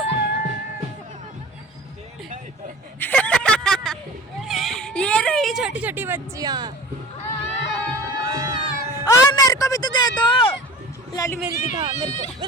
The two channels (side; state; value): both; normal; correlation 0.40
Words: ये रही छोटी छोटी बच्चियां। और मेरे को भी तो दे दो। लाली मेरी दिखा,